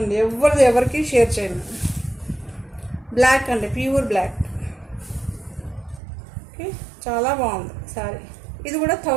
ఎవరికి షేర్ చేయను. బ్లాక్ అండి, ప్యూర్ బ్లాక్. ఓకే, చాలా బాగుంది శారీ. ఇది కూడా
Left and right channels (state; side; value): drops out; left; at 6.0 s